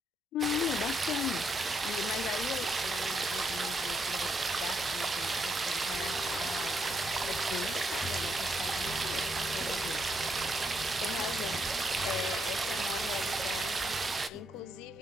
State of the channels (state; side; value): normal; both; correlation 0.77